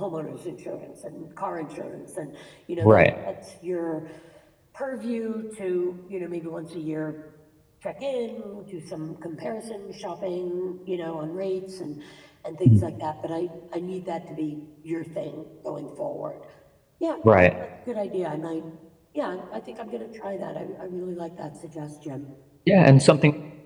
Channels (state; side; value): identical; both; correlation 1.00